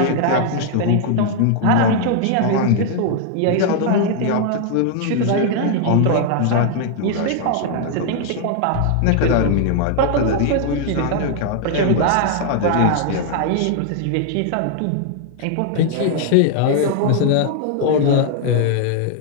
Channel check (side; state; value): both; different; correlation 0.00